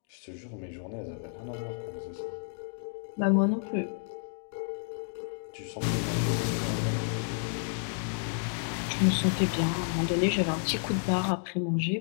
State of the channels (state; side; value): silent; right; digital silence